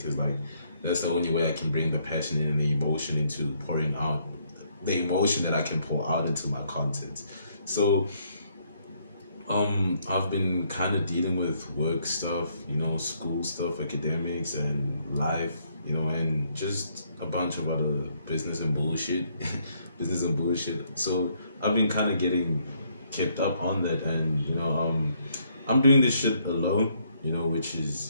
like that's the only way I can bring the passion and the emotion into pouring out the emotion that I can pour out into my content. So I've been kind of dealing with work stuff, you know, school stuff, academics, and life, you know, and just a bunch of other business and bullshit, So I've been kind of getting kept up on that, and you know, I'm doing this shit alone, you know, which is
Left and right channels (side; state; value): both; inverted; correlation -0.70